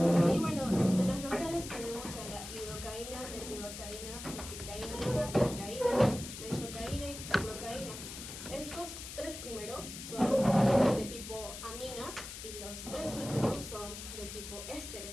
Y bueno, entre los locales tenemos a la lidocaína, mepivacaína, mepicaína, mepicaína, benzocaína y procaína. Estos tres primeros son de tipo aminas y los tres últimos son de tipo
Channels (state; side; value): noise; left; hiss, 10 dB below the sound